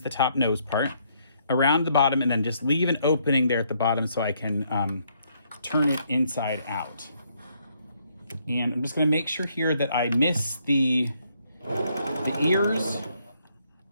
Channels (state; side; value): inverted; both; correlation -0.71